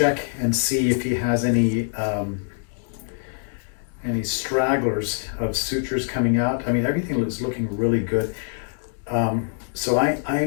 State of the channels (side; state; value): right; silent; digital silence